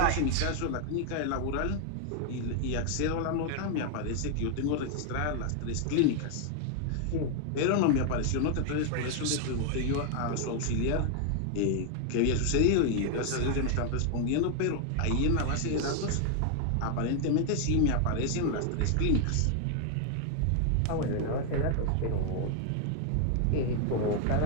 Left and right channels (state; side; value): different; both; correlation 0.00